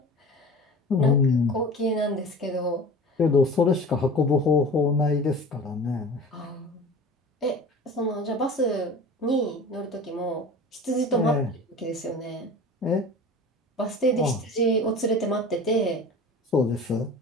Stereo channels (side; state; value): both; normal; correlation 0.38